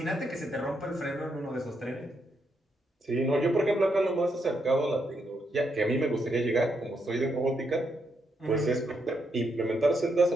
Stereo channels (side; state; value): both; normal; correlation 0.79